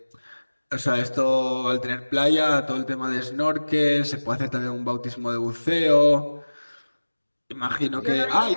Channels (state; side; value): inverted; both; correlation -1.00